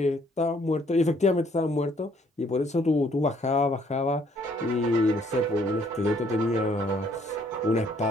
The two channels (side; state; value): both; normal; correlation 0.65